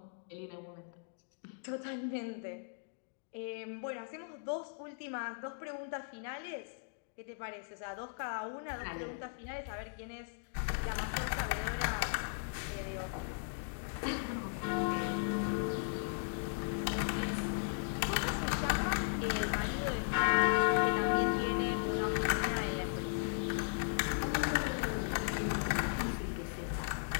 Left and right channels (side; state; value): right; silent; digital silence